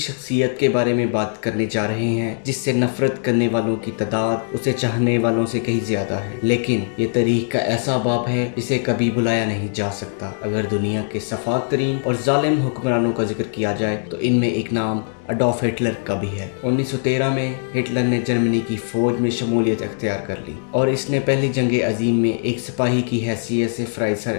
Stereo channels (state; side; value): silent; right; digital silence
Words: کے بارے میں بات کرنے جا رہے ہیں جس سے نفرت کرنے والوں کی تعداد اسے چاہنے والوں سے کہیں زیادہ ہے، لیکن یہ تاریخ کا ایسا باب ہے جسے کبھی بلایا نہیں جا سکتا۔ اگر دنیا کے سفاک ترین اور ظالم حکمرانوں کا ذکر کیا جائے تو ان میں ایک نام اڈولف ہٹلر کا بھی ہے۔ 1913 میں ہٹلر نے جرمنی کی فوج میں شمولیت اختیار کر لی اور اس نے پہلی جنگ عظیم میں ایک سپاہی کی حیثیت سے فرائض سر